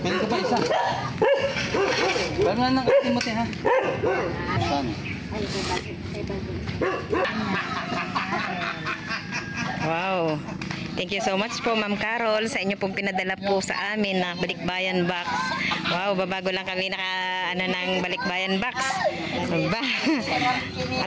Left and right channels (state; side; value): identical; both; correlation 1.00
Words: Meron ka pa isa. Paano na Timothy ha? Wow. Thank you so much po Ma'am Carol sa inyo pong pinadala po sa amin na balikbayan box. Wow, babago lang kami ng balikbayan box. Ba?